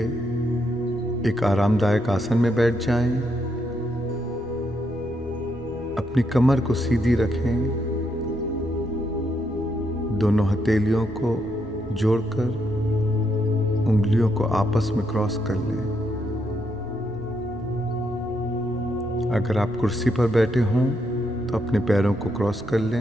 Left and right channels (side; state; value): both; normal; correlation 0.78